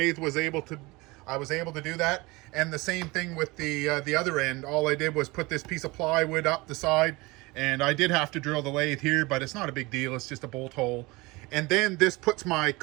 was able to, I was able to do that. And the same thing with the other end. All I did was put this piece of plywood up the side, and I did have to drill the lathe here, but it's not a big deal. It's just a bolt hole. And then this puts my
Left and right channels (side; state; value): left; quieter; 23.2 dB